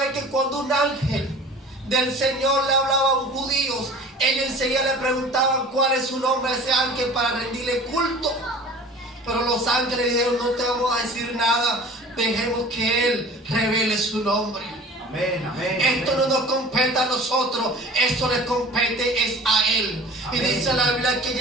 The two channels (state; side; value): normal; both; correlation 0.43